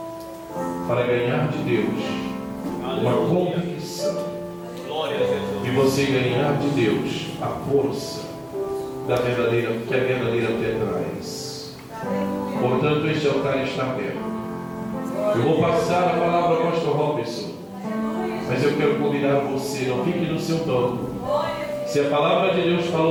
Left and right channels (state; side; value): identical; both; correlation 1.00